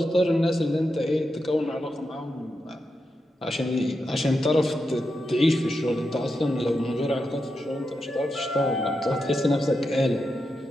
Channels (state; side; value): normal; both; correlation 0.87